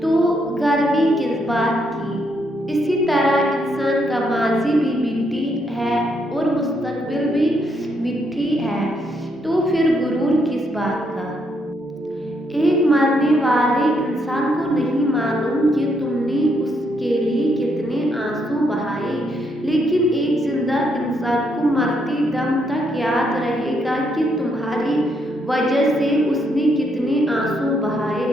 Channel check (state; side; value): normal; both; correlation 0.75